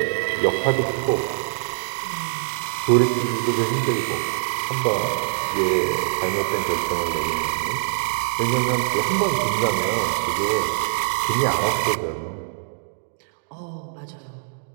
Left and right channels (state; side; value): silent; left; digital silence